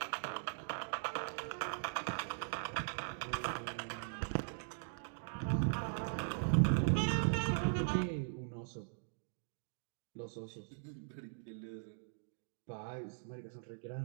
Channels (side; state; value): left; silent; digital silence